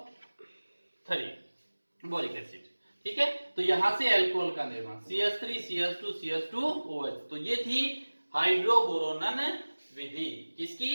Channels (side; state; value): both; inverted; correlation -1.00